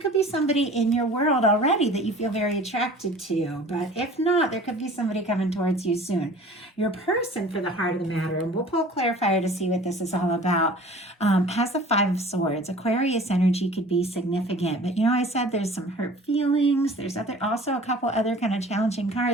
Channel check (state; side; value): normal; both; correlation 0.45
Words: be somebody in your world already that you feel very attracted to, but if not, there could be somebody coming towards you soon. Your person for the heart of the matter, and we'll pull a clarifier to see what this is all about, has the Five of Swords. Aquarius energy could be significant, but I said there's some hurt feelings. There's also a couple other kind of challenging